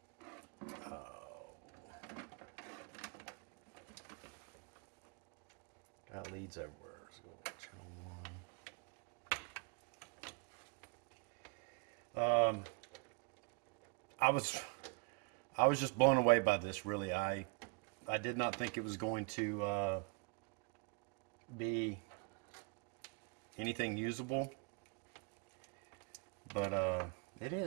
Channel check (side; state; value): left; quieter; 30.0 dB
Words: Got leads everywhere. So channel 1. I was just blown away by this, really. I did not think it was going to be anything usable, but it